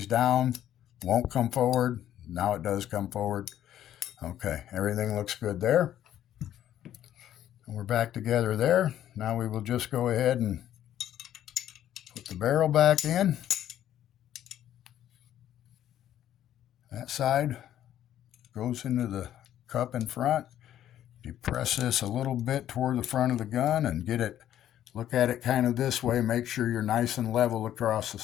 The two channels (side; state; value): right; quieter; 11.5 dB